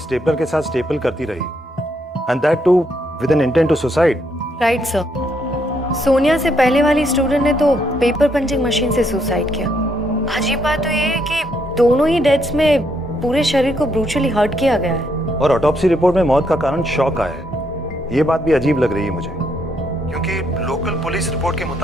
स्टेपलर के साथ स्टेपल करती रही, and that too with an intent to suicide. Right sir. Sonia से पहले वाली स्टूडेंट ने तो पेपर पंचिंग मशीन से सुसाइड किया। अजीब बात तो ये है कि दोनों ही डेथ्स में पूरे शरीर को ब्रूचुअली हर्ट किया गया है। और ऑटोप्सी रिपोर्ट में मौत का कारण शॉक आया है। ये बात भी अजीब लग रही है मुझे, क्योंकि लोकल पुलिस रिपोर्ट के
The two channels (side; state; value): both; normal; correlation 0.75